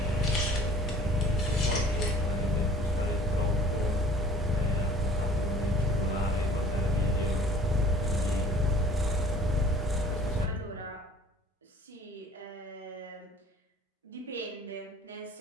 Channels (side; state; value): both; normal; correlation 0.51